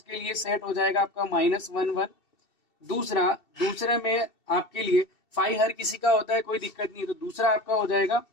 लिए सेट हो जाएगा आपका -1 1। दूसरे में आपके लिए फाइव हर किसी का होता है, कोई दिक्कत नहीं है, तो दूसरा आपका हो जाएगा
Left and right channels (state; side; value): late; right; 2.7 ms